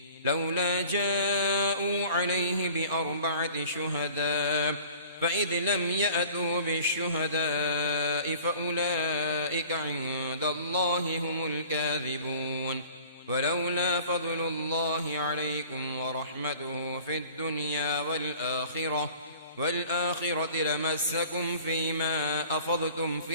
لولا جاءوا عليه ب4 شهداء فإذ لم يأتوا بالشهداء فأولئك عند الله هم الكاذبون ولولا فضل الله عليكم ورحمته في الدنيا والآخرة لمسكم فيما أفضتم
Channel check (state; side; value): inverted; both; correlation -0.47